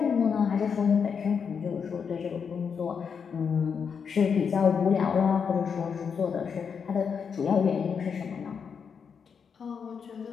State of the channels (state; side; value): quieter; right; 6.5 dB